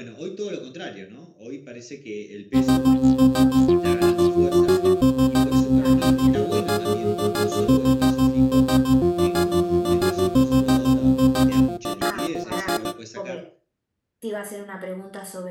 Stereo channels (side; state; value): both; identical; correlation 1.00